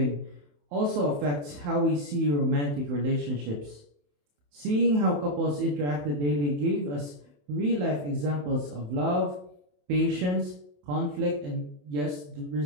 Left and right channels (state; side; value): late; left; 27 ms